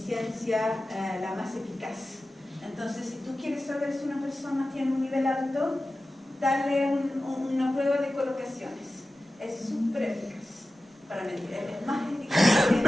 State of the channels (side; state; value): both; normal; correlation 0.95